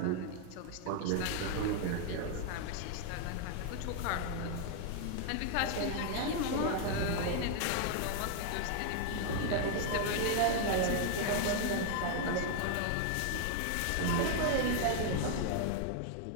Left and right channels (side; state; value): both; different; correlation 0.00